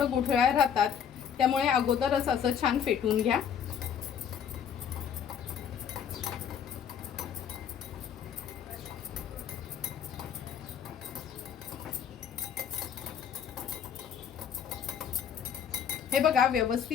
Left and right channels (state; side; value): quieter; right; 8.2 dB